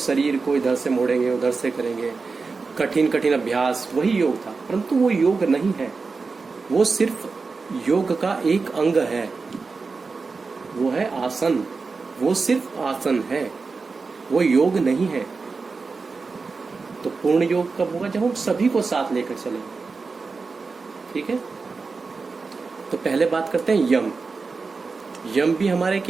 को इधर से मोड़ेंगे, उधर से करेंगे, कठिन कठिन अभ्यास, वही योग था। परंतु वो योग नहीं है, वो सिर्फ योग का एक अंग है, वो है आसन। वो सिर्फ आसन है, वो योग नहीं है। तो पूर्ण योग कब होगा? जब हम सभी को साथ लेकर चलेंगे। ठीक है, तो पहले बात करते हैं यम। यम भी हमारे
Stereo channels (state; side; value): quieter; left; 4.4 dB